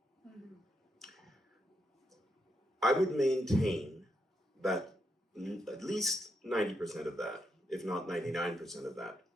Mm-hmm. I would maintain that at least 90% of that, if not 99% of that,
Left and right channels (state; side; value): normal; both; correlation 0.81